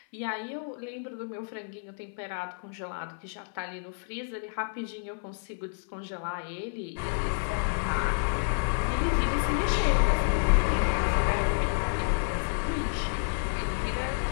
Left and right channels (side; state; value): right; silent; 55 dB below the other